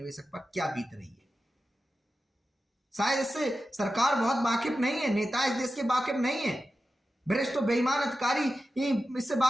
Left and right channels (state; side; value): normal; both; correlation 0.92